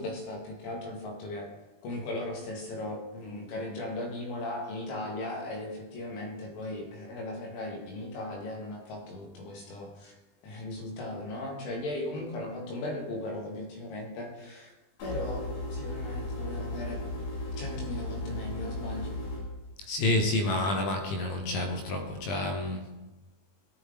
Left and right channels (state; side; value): late; right; 20 ms